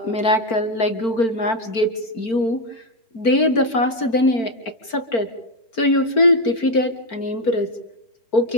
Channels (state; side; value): late; right; 4.4 ms